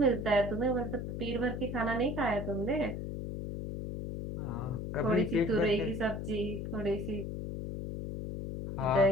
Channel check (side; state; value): left; noise; hum, 5 dB below the sound